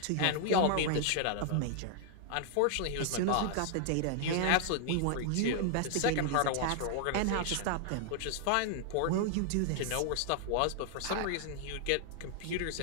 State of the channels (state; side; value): different; both; correlation -0.01